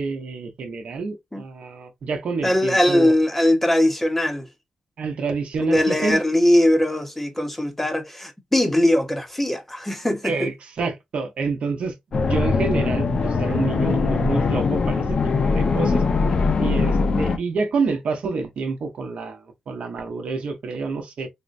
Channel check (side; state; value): both; normal; correlation 0.89